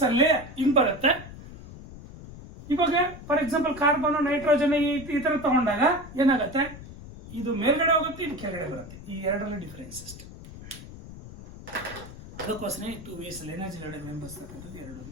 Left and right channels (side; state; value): left; noise; rumble, 15 dB below the sound